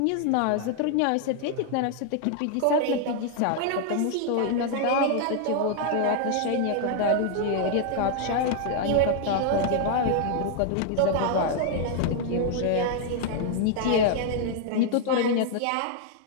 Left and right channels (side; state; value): both; different; correlation 0.00